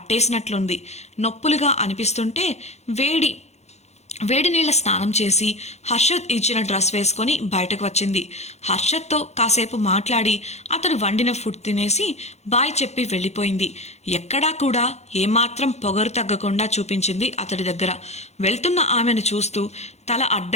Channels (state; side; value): late; right; 0.32 ms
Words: నొప్పులుగా అనిపిస్తుంటే వేడి నీళ్ళ స్నానం చేసి హర్షద్ ఇచ్చిన డ్రెస్ వేసుకొని బయటకు వచ్చింది. హర్షద్తో కాసేపు మాట్లాడి అతడు వండిన ఫుడ్ తినేసి బాయ్ చెప్పి వెళ్ళిపోయింది. ఎక్కడా కూడా ఏమాత్రం పొగరు తగ్గకుండా చూపించింది అతడి దగ్గర. వెళ్తున్న ఆమెను చూస్తూ తల